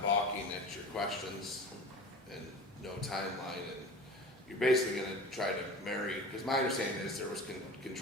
balking at your questions and no timeline, and you're basically gonna try to marry, because my understanding is there was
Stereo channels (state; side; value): normal; both; correlation 0.36